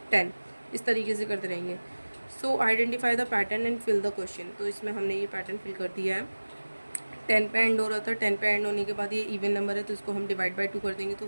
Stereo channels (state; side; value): inverted; both; correlation -1.00